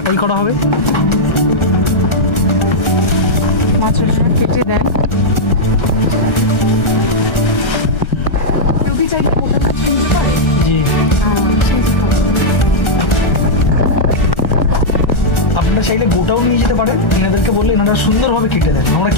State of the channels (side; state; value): right; late; 1.4 ms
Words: করা হবে। মাছ কেটে দেন। কেউ কি চাইলে গোটা মাছ নিতে পারে? জি, আপনারা চাইলে গোটাও নিয়ে যেতে পারেন, এনাদেরকে বললে এনারা সুন্দরভাবে কেটে দেন, আমরা